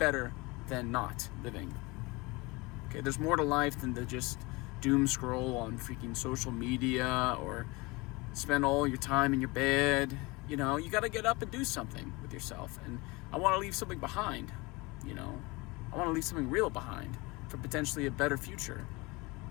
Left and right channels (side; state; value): right; quieter; 24.7 dB